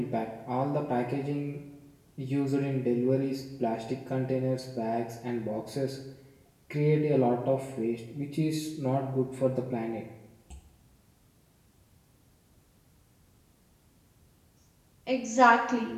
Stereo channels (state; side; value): identical; both; correlation 1.00